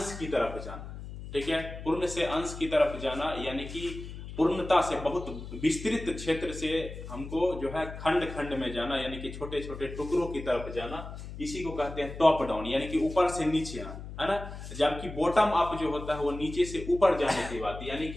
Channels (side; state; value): left; noise; hum, 11 dB below the sound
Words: की तरफ जाना। ठीक है, पूर्ण से अंश की तरफ जाना, यानी कि पूर्णता से बहुत विस्तृत क्षेत्र से हमको जो है खंड खंड में जाना, यानी कि छोटे छोटे टुकड़ों की तरफ जाना, इसी को कहते हैं टॉप डाउन, यानी कि ऊपर से नीचे आना, है ना। जबकि बॉटम अप जो होता है वो नीचे से ऊपर जाने की बात, यानी